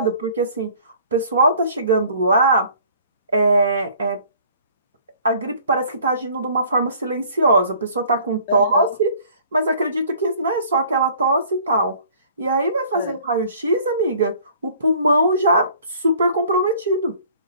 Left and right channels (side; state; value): both; inverted; correlation -0.53